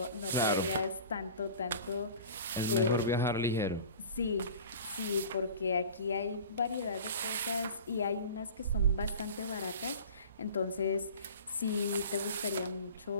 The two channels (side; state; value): both; inverted; correlation -0.40